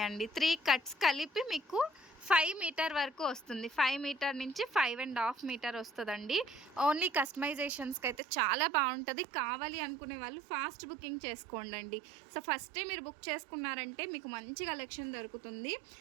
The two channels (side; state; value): left; drops out; at 8.2 s